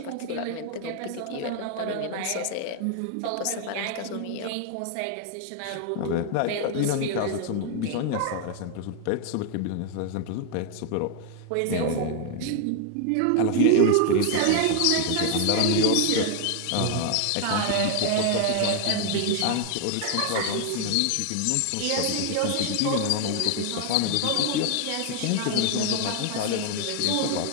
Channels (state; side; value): different; both; correlation 0.00